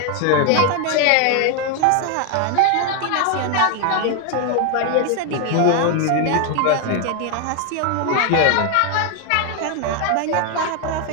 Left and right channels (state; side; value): different; both; correlation 0.01